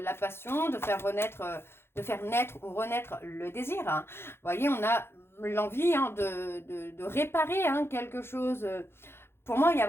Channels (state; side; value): late; right; 0.12 ms